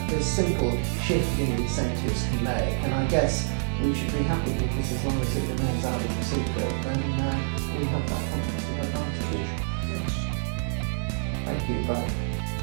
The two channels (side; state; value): left; silent; digital silence